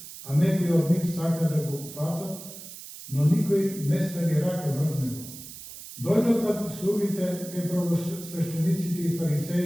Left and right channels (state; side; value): noise; right; hiss, 14 dB below the sound